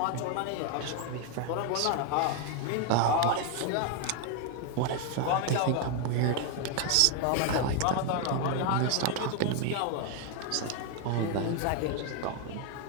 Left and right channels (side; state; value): both; different; correlation 0.01